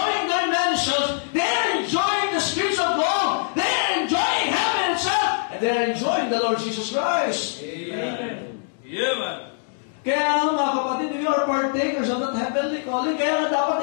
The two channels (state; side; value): silent; right; digital silence